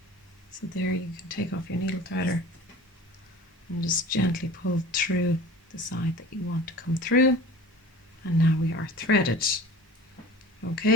So there you can take off your needle threader and just gently pull through the side that you want to come through. And now we are threaded.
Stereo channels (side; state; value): both; normal; correlation 0.40